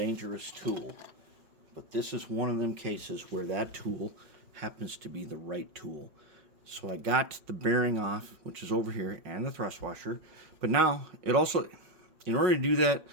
tool. But this is one of them cases where that tool happens to be the right tool. So I got the bearing off, which is over here, and the thrust washer. But now, it also, in order to do that,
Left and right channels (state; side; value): late; left; 5.5 ms